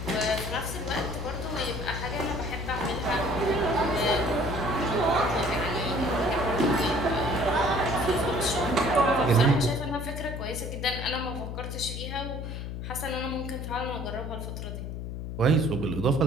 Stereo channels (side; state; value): left; noise; hum, 6 dB below the sound